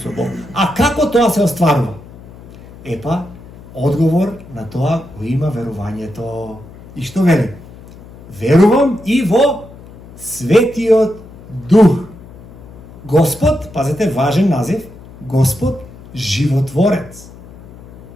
Бог. А како тоа се остварува? Епа, одговор на тоа го има верувањето. И што вели? Верувам и во Светиот Дух. Господ, пазете, важен назив, Господ животворец,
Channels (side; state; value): left; noise; hum, 19 dB below the sound